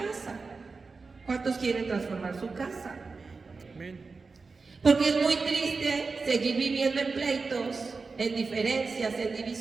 ¿Cuántos quieren transformar su casa? Amén. Porque es muy triste seguir viviendo en pleitos, en diferencias, en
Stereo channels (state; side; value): quieter; left; 4.3 dB